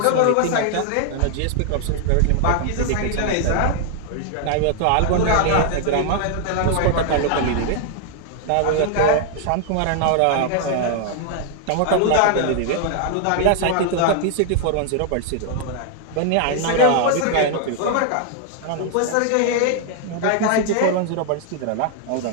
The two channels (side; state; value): both; different; correlation 0.00